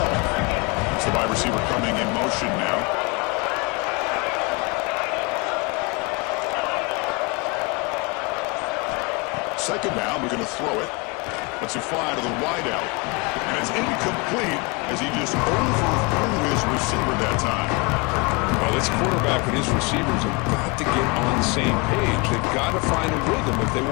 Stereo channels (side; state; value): right; quieter; 28.4 dB